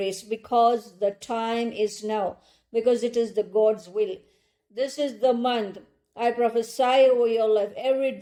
because the time is now, because it is the God's will. This is the month. I prophesy over your life. Every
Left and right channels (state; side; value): identical; both; correlation 1.00